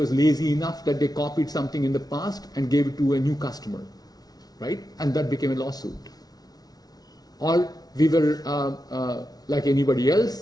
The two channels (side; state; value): right; late; 0.19 ms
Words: lazy enough that they copied something in the past and gave it to a new customer, right? And that became a lawsuit. Or we were like anybody else,